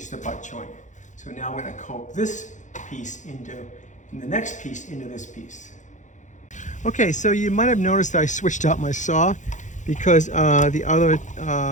the butt joint. So now we're gonna cope this piece and the next piece into this piece. Okay, so you might have noticed that I switched out my saw because the other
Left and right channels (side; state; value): right; late; 0.36 ms